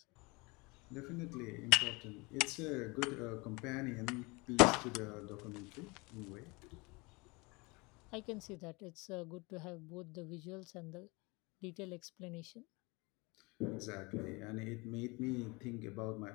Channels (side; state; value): right; quieter; 26.3 dB